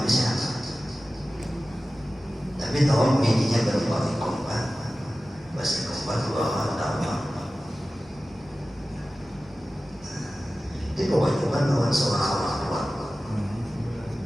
bisa. Tapi tahu bininya baru pakai kompak, pasti kompak 2 tahun. Itu kewajiban lawan seorang orang tua.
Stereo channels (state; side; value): normal; both; correlation 0.95